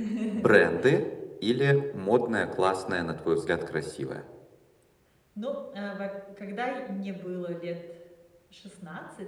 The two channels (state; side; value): identical; both; correlation 1.00